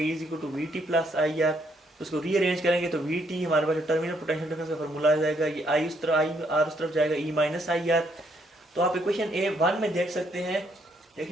is equal to V T plus I R. उसको रीअरेंज करेंगे तो वी टी हमारे पास टर्मिनल पोटेंशियल डिफरेंस का फार्मूला आ जाएगा, ये आई उस तरफ आई आर उस तरफ जाएगा ई माइनस आई आर। तो आप इक्वेशन A1 में देख सकते हैं,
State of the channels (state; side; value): normal; both; correlation 0.71